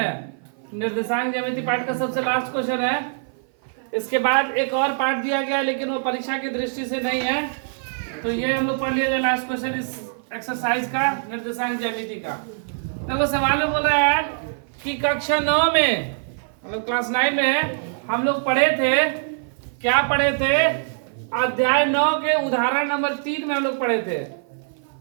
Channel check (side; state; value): left; silent; 55 dB below the other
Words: निर्देशांक ज्यामिति पार्ट का सबसे लास्ट क्वेश्चन है। इसके बाद एक और पार्ट दिया गया लेकिन वो परीक्षा की दृष्टि से नहीं है, तो ये हम लोग पढ़ लिया लास्ट क्वेश्चन इस एक्सरसाइज का निर्देशांक ज्यामिति का। देखो सवाल में बोल रहा है कि कक्षा 9 में मतलब क्लास 9 में हम लोग पढ़े थे, क्या पढ़े थे, अध्याय 9 के उदाहरण नंबर 3 में हम लोग पढ़े थे।